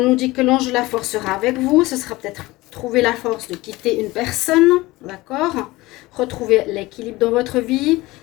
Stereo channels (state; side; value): quieter; right; 20.0 dB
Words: dit que l'ange de la force sera avec vous. Ce sera peut-être trouver la force de quitter une personne, d'accord? Retrouver l'équilibre dans votre vie.